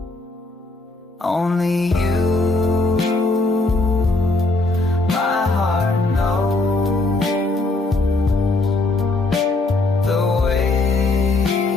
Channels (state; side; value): quieter; right; 3.0 dB